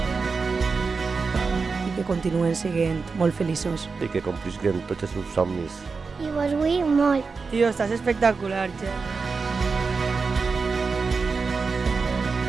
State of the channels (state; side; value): quieter; left; 4.7 dB